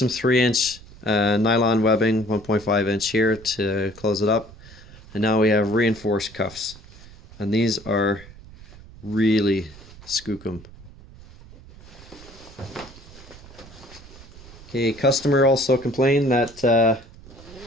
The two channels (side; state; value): right; noise; rumble, 20 dB below the sound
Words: 3-inch nylon webbing, 1.5-inch here to close it up. And now we have reinforced cuffs. And these are really skookum. Okay, customer also complained that